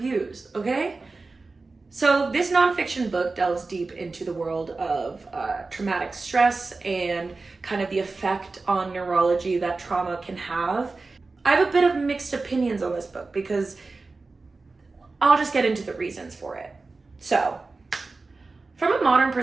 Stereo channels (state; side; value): quieter; left; 3.7 dB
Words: okay? So this nonfiction book delves deep into the world of traumatic stress and kind of the effect on neurology that trauma can have. I have a bit of mixed opinions on this book because I'll just get into the reasons for it. So, from a modern